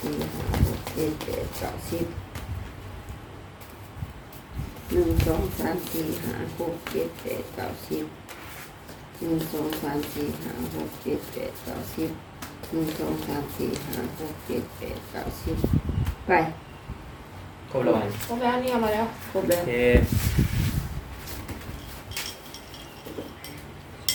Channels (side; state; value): both; identical; correlation 1.00